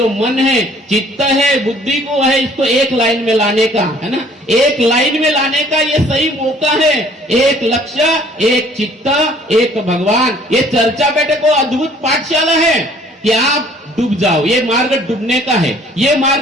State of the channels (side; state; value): both; normal; correlation 0.56